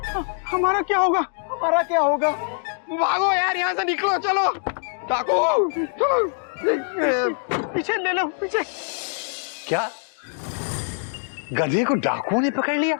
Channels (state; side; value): silent; right; 63 dB below the other